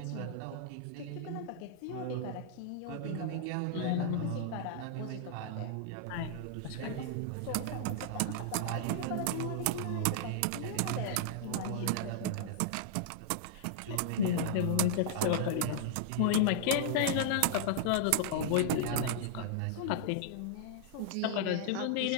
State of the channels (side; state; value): both; different; correlation -0.01